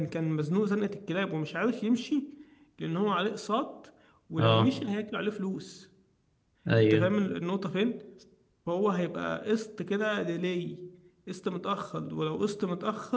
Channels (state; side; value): identical; both; correlation 1.00